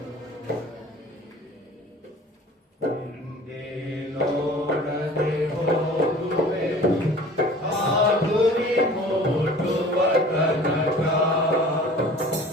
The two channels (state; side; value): normal; both; correlation 0.45